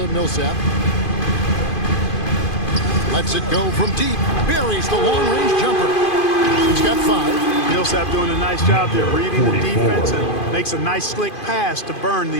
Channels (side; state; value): right; late; 2.5 ms